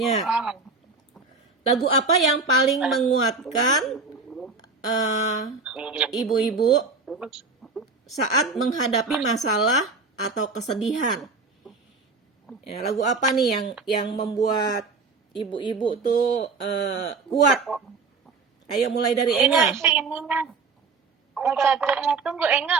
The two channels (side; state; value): left; quieter; 4.2 dB